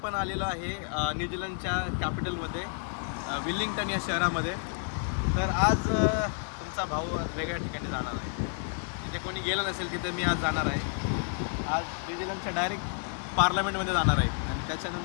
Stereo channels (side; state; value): right; silent; 58 dB below the other